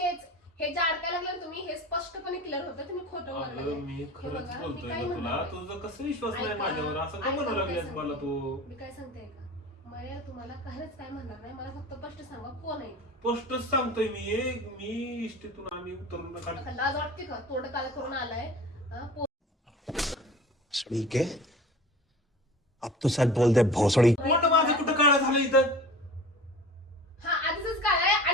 हे जे अडकायला लागलं तुम्ही हे स्पष्टपणे क्लिअर होतं तुम्ही खोटं अगं बोलताय. मी हे खरंच बघा, मी बोलतोय काय ना तुला म्हणते? तुझा कसं विश्वास नाही ऐका, माझ्यावर असं का ऐका, म्हणू मी लागलीस काय मला तू मी काय सांगते का मला तुम्हाला काहीच काय म्हणणार नाही मला फक्त स्पष्ट सांगा कोण आहे ते. स्पष्टच सांगतोय मी इष्टीतून आम्ही उतरून आता लाज वाटते का तोंड काळ करून आलाय हा, भोसड़ी के अब तो सच बोल दे भोसड़ी पोट माझं कुठं काळा झालं इथं हा आधीच काय आहे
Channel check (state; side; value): normal; both; correlation 0.39